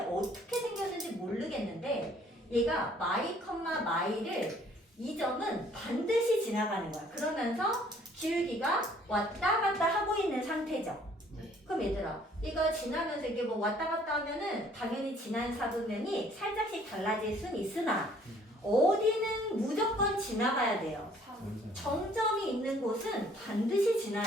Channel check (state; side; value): normal; both; correlation 0.59